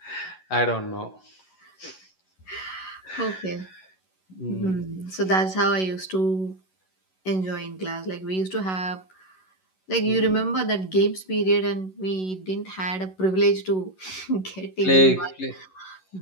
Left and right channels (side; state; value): right; late; 11 ms